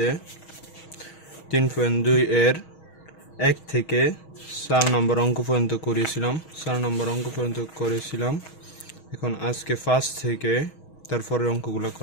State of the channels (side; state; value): right; late; 6.3 ms